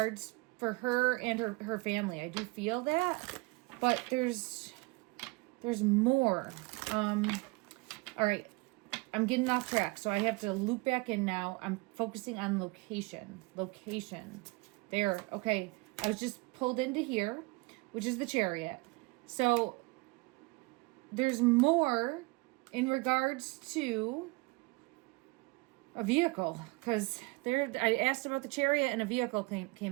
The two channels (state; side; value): quieter; left; 25.5 dB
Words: for her and her family. I do feel that, but there's more. All right, I'm getting off track, so I have to loop back in now. I'm focusing on location. There, okay. I was just pulled into here, which is the Chariot. So there's more in regards to a vehicle, because I asked about the Chariot and a vehicle